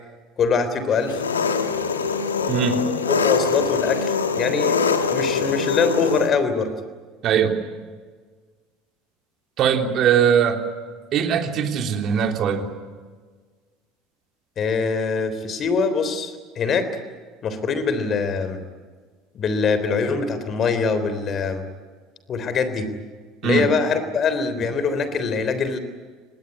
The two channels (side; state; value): both; normal; correlation 0.34